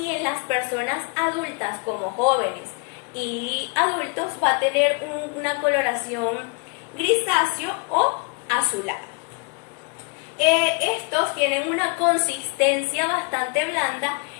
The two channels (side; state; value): right; quieter; 33.8 dB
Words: en las personas adultas como jóvenes y adultos va a tener una coloración grisáceo o azulada. Estos tienen una consistencia bastante blanda